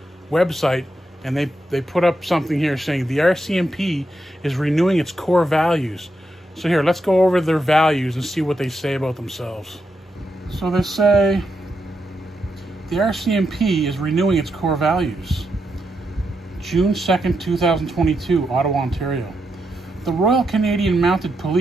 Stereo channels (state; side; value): normal; both; correlation 0.84